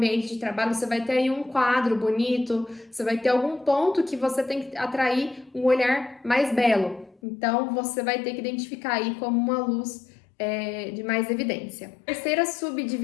de trabalho, você vai ter aí um quadro bonito, você vai ter algum ponto que você tem que atrair um olhar mais belo. Então, você vai ter que identificar aí como uma luz de mais evidência. A terceira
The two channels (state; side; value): drops out; right; at 7.2 s